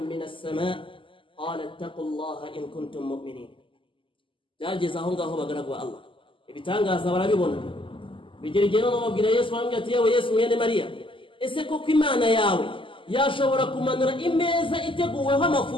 السماء قال اتقوا الله إن كنتم مؤمنين byageze aho ngaho bagaragwa Allah ibitangaza barabibona bigerigera no babwira Yesu bambye ati yewe Yesu mwene Maria ese koko Imana yawe yashobora kumanura imeza iteguweho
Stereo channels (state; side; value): late; right; 0.25 ms